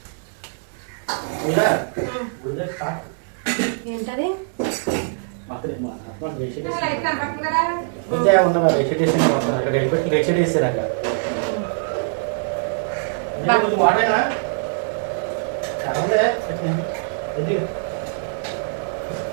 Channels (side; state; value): left; silent; digital silence